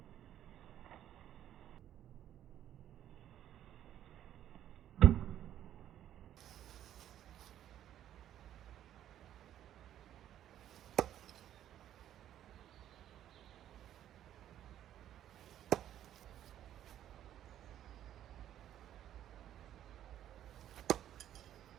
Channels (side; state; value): left; quieter; 11.3 dB